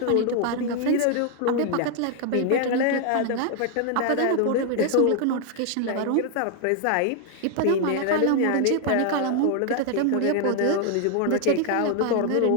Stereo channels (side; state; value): both; different; correlation 0.00